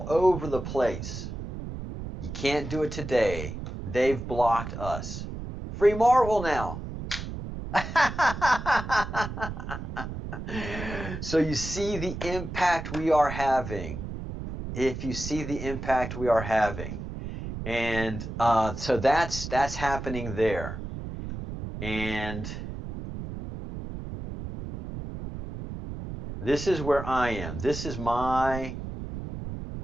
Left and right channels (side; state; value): right; noise; rumble, 8 dB below the sound